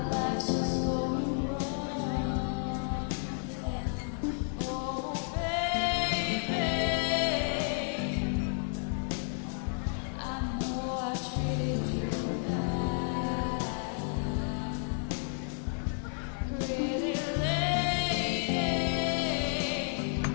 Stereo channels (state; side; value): silent; right; 56 dB below the other